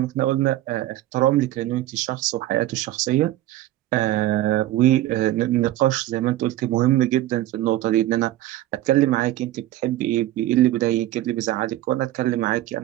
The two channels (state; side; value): quieter; left; 14.9 dB